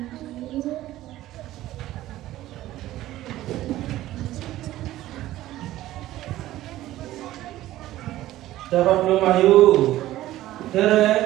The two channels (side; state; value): left; quieter; 15.0 dB